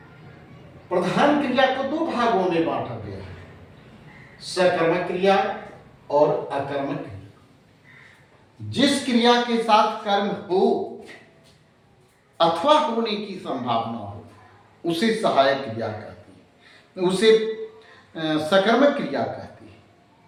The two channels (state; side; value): identical; both; correlation 1.00